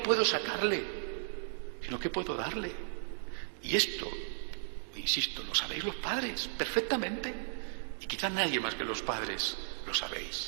sacarle? Sino, ¿qué puedo darle? Y esto, insisto, lo sabéis los padres perfectamente. Y quizás nadie más que los padres lo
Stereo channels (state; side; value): silent; left; digital silence